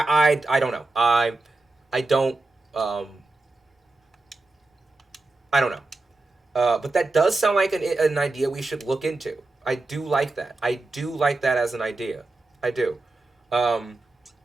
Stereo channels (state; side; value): quieter; left; 3.2 dB